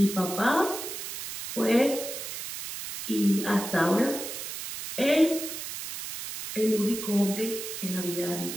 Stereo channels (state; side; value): noise; right; hiss, 7 dB below the sound